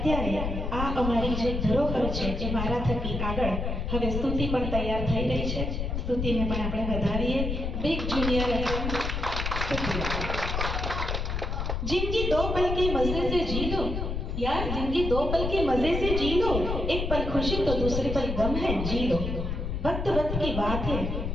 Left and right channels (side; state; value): left; noise; rumble, 2 dB below the sound